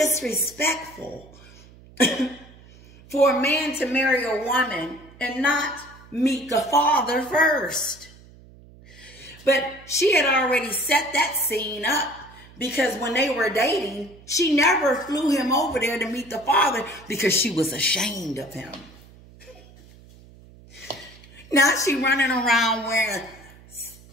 for a man to marry a woman and not meet the father first. But she had already set that scene up because when they were dating, she never flew him over there to meet the father because she was ashamed of him. Now she running around wearing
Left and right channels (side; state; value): right; noise; hum, 23 dB below the sound